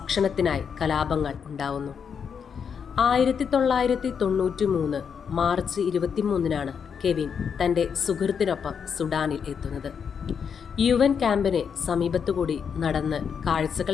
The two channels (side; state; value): right; quieter; 6.9 dB